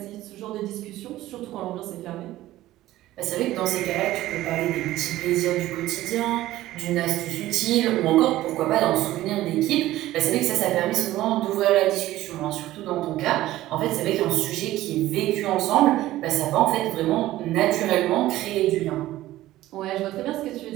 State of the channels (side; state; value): left; quieter; 15.5 dB